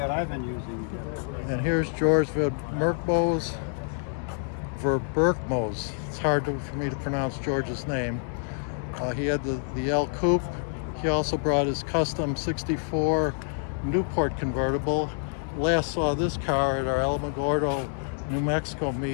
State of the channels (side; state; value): right; silent; 60 dB below the other